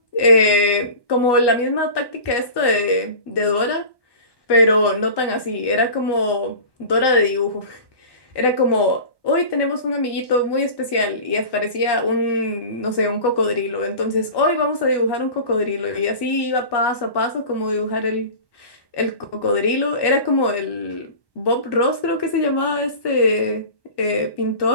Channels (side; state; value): right; late; 1.1 ms